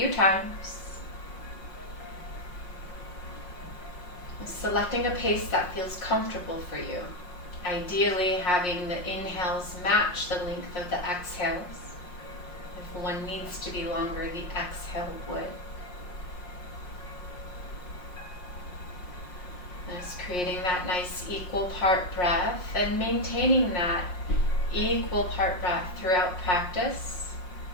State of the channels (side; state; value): right; late; 5.6 ms